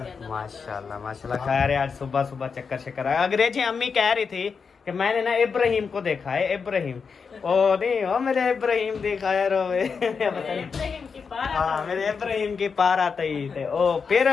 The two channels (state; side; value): quieter; right; 5.6 dB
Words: माशाल्लाह माशाल्लाह। खैर आज सुबह सुबह चक्कर शक्कर आया। अंग्रेजी अम्मी कह रही थी कि मैंने ना इब्राहिम को देखा है, इब्राहिम ओ नहीं हो मेरे इब्राहिम देखा है रोवे हाँ मेरे इब्राहिम की पार आते ही थे। ओ फिर